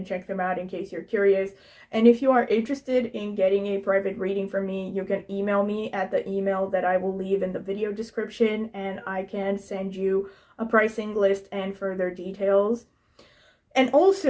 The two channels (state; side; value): identical; both; correlation 1.00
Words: check them out in case you're curious. And if you are interested in getting a private reading from me, you can email me at the email that I will leave in the video description, and I can send you a pricing list and further details. And